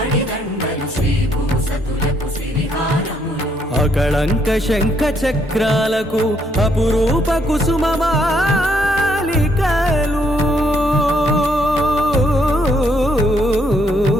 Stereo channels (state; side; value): normal; both; correlation 0.71